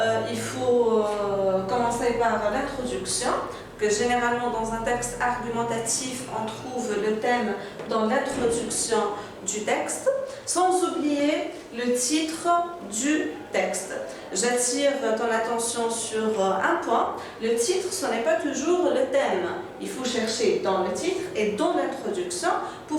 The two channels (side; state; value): both; identical; correlation 1.00